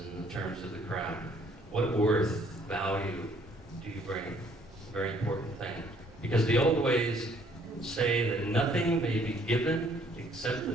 in the terms of the craft. What worth, value do you bring? Very important thing. Because the old ways say that nothing may be given except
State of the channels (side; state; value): both; normal; correlation 0.62